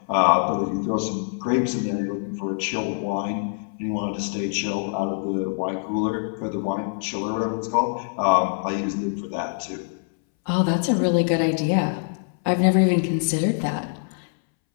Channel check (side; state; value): right; silent; 62 dB below the other